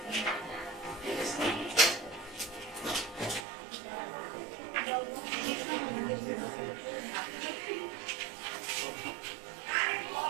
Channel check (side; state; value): left; drops out; at 3.5 s